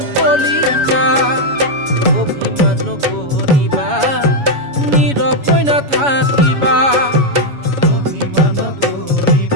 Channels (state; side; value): late; left; 7.1 ms